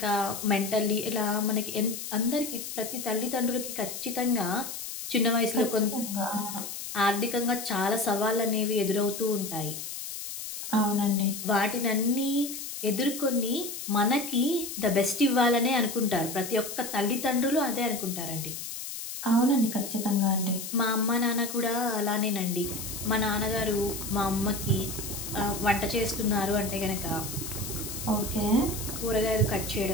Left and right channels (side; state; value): left; noise; hiss, 8 dB below the sound